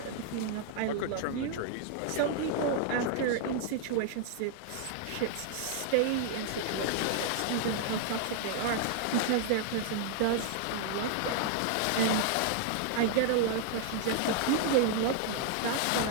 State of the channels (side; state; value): both; different; correlation -0.01